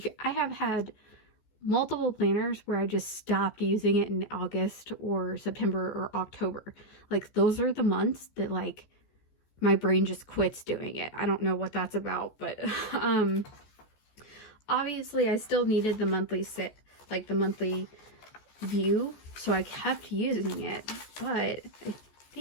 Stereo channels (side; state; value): right; late; 14 ms